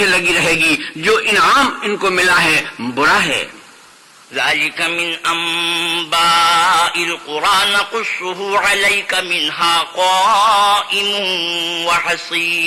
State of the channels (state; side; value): identical; both; correlation 1.00